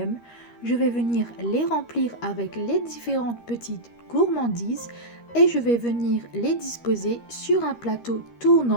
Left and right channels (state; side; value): late; right; 13 ms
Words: Je vais venir les remplir avec les différentes petites gourmandises et je vais venir les disposer sur un plateau